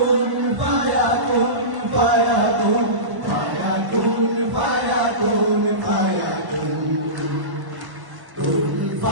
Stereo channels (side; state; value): left; late; 1.1 ms